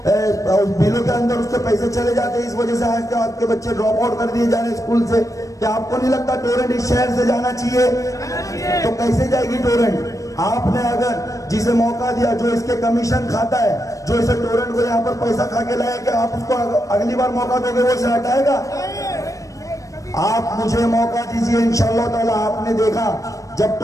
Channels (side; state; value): right; late; 0.16 ms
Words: बिलों के अंदर उसके पैसे चले जाते हैं? इस वजह से आज आपके बच्चे ड्रॉप आउट कर दिए जा रहे स्कूल से। क्या आपको नहीं लगता टोरेंट इस शहर से जाना चाहिए? तो कैसे जाएगी टोरेंट? आपने अगर जिसे मौका दिया, जो इसके कमीशन खाता है, जो इसे टोरेंट को यहाँ पर पैसा खा के लाया, कि आप उसको अगली बार मौका दोगे वो इसे हटाएगा? आप मुझे मौका दीजिए, इंशाअल्लाह ताला। आपने देखा जब